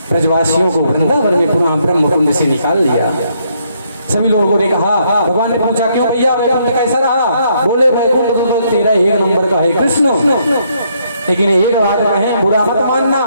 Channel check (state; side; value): inverted; both; correlation -0.72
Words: ब्रजवासियों को वृंदावन में पुनः ब्रह्मकुंड से निकाल लिया। सभी लोगों ने कहा, भगवान ने पूछा क्यों भैया वैकुंठ कैसा रहा? बोले वैकुंठ तो तेरा एक नंबर का है कृष्ण, लेकिन एक बात कहें बुरा मत मानना।